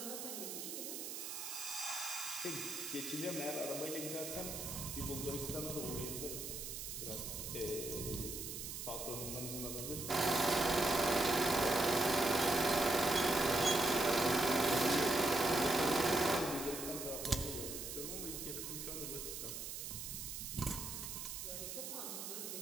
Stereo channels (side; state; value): right; noise; hiss, 6 dB below the sound